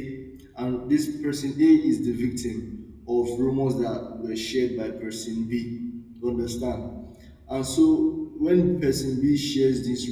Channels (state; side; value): identical; both; correlation 1.00